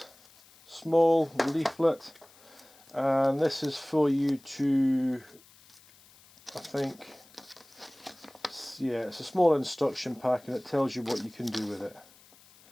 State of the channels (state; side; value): noise; left; hiss, 26 dB below the sound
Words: small leaflet, and this is for you to, I think, yeah, it's a small instruction pack, and it tells you what you can do with it.